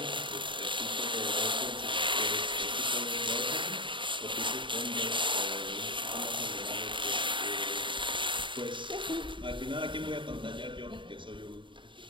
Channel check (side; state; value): left; late; 0.24 ms